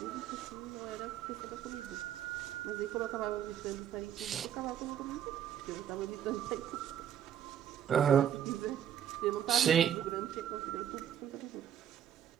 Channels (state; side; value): quieter; left; 9.7 dB